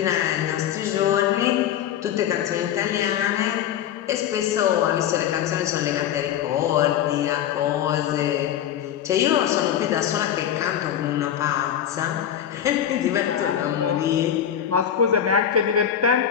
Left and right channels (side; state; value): right; quieter; 9.8 dB